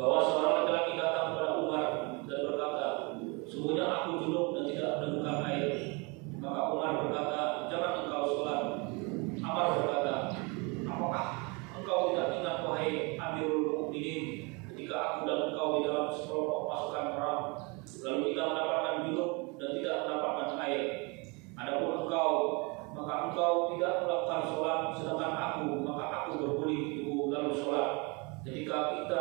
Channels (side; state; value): left; quieter; 29.5 dB